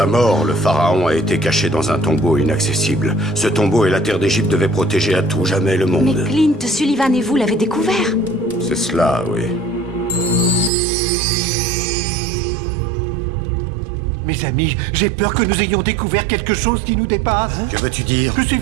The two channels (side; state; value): left; drops out; at 10.7 s